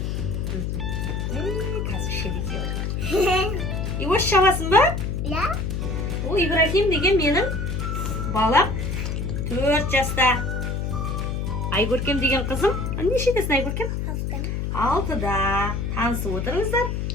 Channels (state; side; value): noise; left; hum, 2 dB below the sound